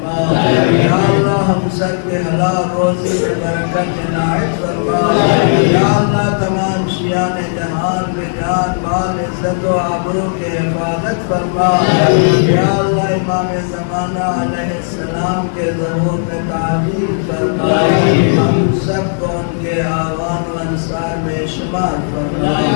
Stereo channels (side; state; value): right; silent; digital silence